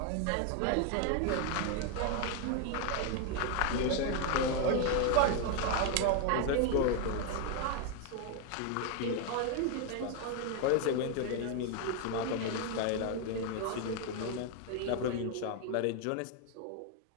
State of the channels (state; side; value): different; both; correlation 0.01